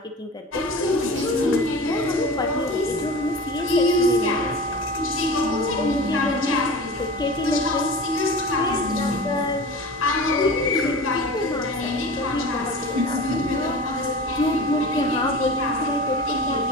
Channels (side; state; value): both; normal; correlation 0.34